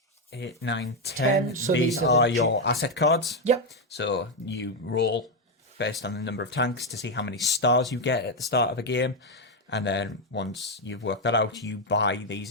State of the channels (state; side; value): normal; both; correlation 0.05